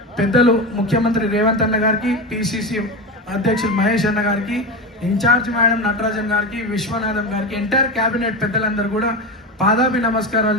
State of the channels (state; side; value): normal; both; correlation 0.20